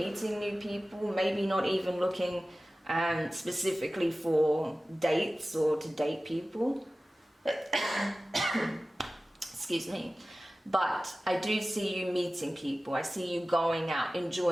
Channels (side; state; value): both; normal; correlation 0.96